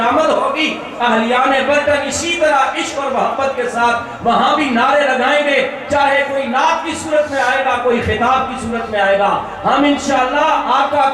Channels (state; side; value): identical; both; correlation 1.00